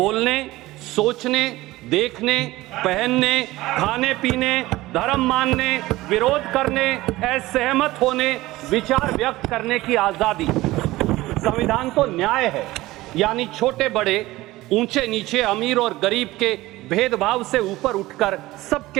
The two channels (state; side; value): quieter; left; 18.2 dB